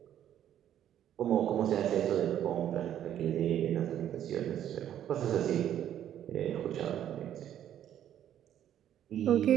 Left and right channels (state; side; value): quieter; left; 10.7 dB